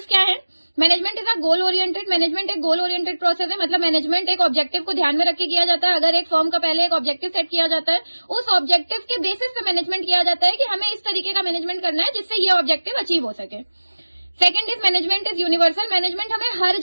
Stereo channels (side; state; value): both; inverted; correlation -1.00